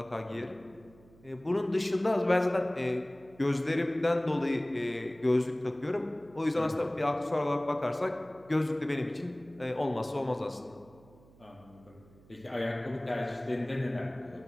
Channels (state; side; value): noise; right; hum, 25 dB below the sound